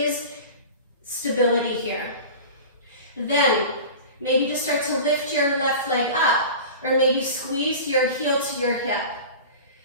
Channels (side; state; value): both; inverted; correlation -0.35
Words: stability here. Then maybe just start to lift your left leg up, or maybe squeeze your heel to your hip.